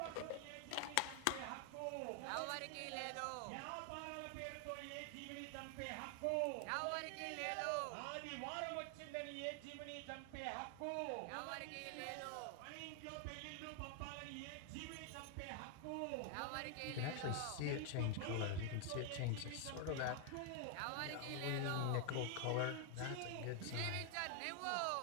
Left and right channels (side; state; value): both; different; correlation 0.00